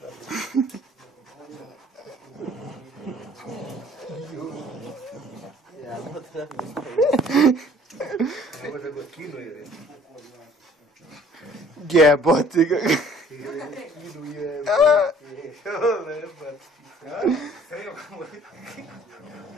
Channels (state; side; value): normal; both; correlation 0.55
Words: Ja, no treba mi staviti. ne može go kinu jer Jebote ga. kinu je.